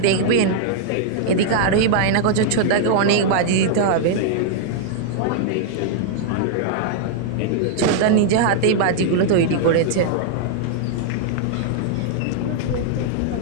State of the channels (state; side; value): different; both; correlation -0.01